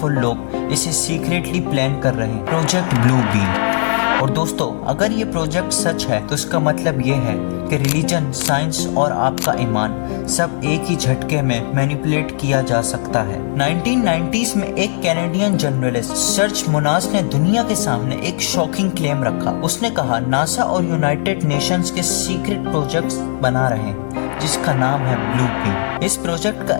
लोग इसे सीक्रेटली प्लान कर रहे हैं, प्रोजेक्ट ब्लू बीम। और दोस्तों अगर ये प्रोजेक्ट सच है तो इसका मतलब ये है कि रिलीजन, साइंस और आपका ईमान सब एक ही झटके में मैनिपुलेट किया जा सकता है। 1990s में एक कैनेडियन जर्नलिस्ट सर्च मुनास ने दुनिया के सामने एक शॉकिंग क्लेम रखा। उसने कहा नासा और यूनाइटेड नेशंस के सीक्रेट प्रोजेक्ट्स बना रहे हैं जिसका नाम है ब्लू बीम। इस प्रोजेक्ट का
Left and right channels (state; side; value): silent; right; digital silence